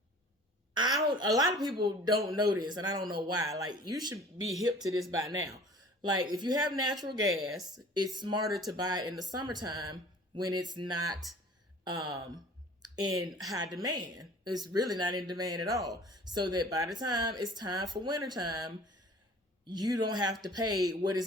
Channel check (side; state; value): both; normal; correlation 0.47